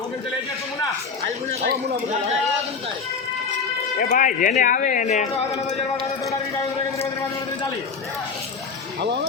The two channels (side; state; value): right; quieter; 5.3 dB